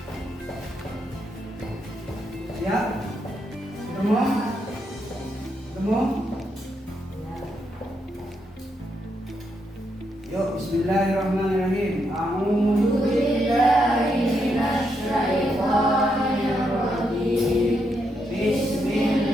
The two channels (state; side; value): normal; both; correlation 0.80